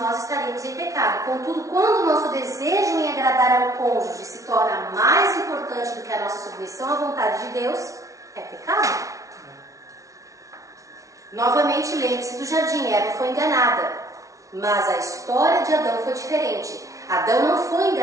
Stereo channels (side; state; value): left; late; 0.16 ms